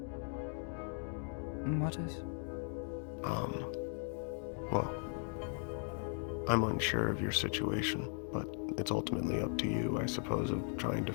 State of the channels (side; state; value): right; silent; 52 dB below the other